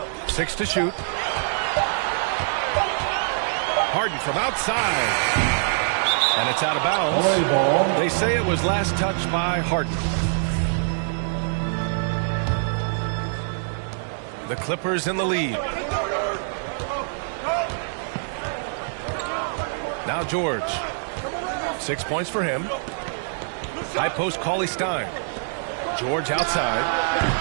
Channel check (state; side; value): silent; left; digital silence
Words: 6 to shoot. Harden from outside. And it's out of bounds. They say it was last touched by Harden. The Clippers in the lead. Now George. 6 points for him. High post Cauley Stein. George outside.